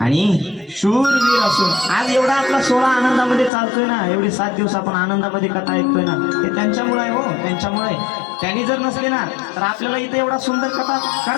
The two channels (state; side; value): drops out; right; at 3.5 s